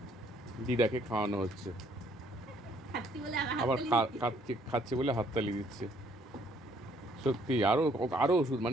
দিদাকে খাওয়ানো হচ্ছে, আবার খাচ্ছে বলে হাততালি দিচ্ছে। সত্যি আরও আরও ওষুধ,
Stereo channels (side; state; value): both; normal; correlation 0.65